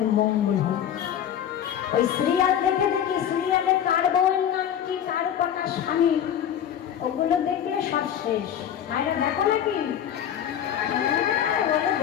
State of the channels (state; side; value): quieter; right; 9.7 dB